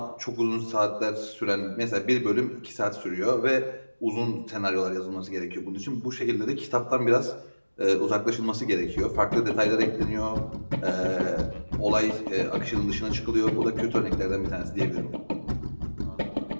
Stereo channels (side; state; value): both; inverted; correlation -1.00